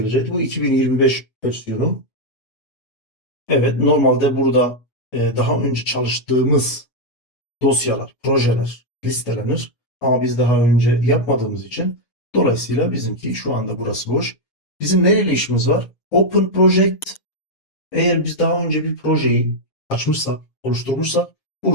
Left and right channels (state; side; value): late; right; 7.4 ms